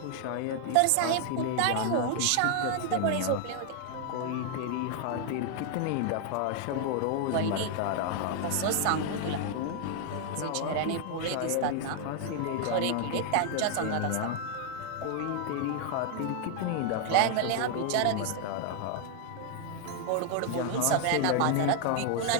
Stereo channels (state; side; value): different; both; correlation 0.00